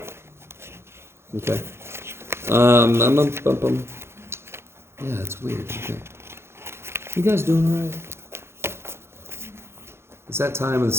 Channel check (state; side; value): late; left; 0.12 ms